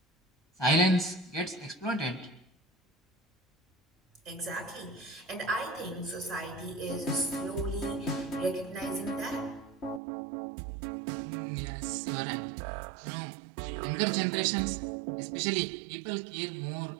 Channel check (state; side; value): drops out; left; at 10.0 s